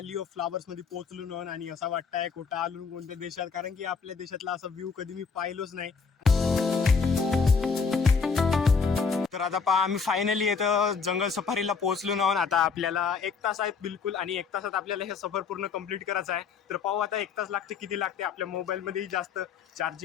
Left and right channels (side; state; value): right; quieter; 5.4 dB